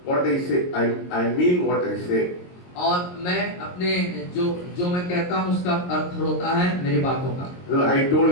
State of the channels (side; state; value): right; late; 22 ms